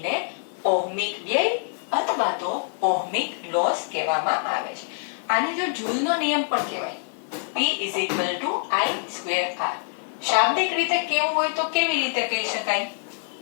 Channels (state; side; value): silent; right; digital silence